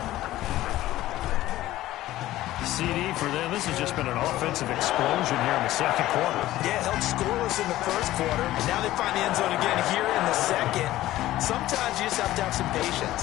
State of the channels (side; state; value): right; quieter; 15.3 dB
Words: CD for them. This has just been an offensive explosion here in the 2nd quarter. Yeah, held scoreless in the 1st quarter. Now they find the end zone again here in the 2nd. Sometimes you just have to have some